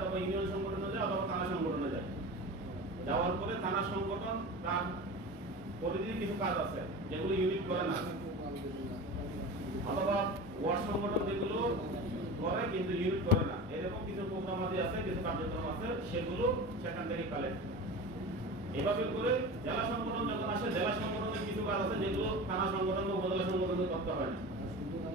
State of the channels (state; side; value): normal; both; correlation 0.32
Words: ইউনিয়ন সংগঠনে যায়, অথবা থানা সংগঠনে যায়। যাওয়ার পরে থানা সংগঠন তার পরিধির কিছু কাজ আছে যেগুলো ইউনিট করে না, অথবা ওয়ার্ড সংগঠন যেগুলো করে কিন্তু ইউনিট করে না, এরকম কিছু প্রোগ্রাম আছে, কিছু কার্যক্রম আছে, সেগুলো সেখান থেকে কালেক্ট। এভাবে করে জেলা সংগঠন যখন আসে, জেলা সংগঠনের কিছু কাজ আছে যেগুলো থানা সংগঠন বা উপজেলা সংগঠনে করতে হয় না।